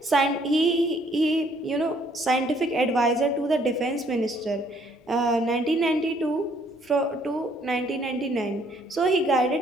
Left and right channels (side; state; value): both; normal; correlation 0.64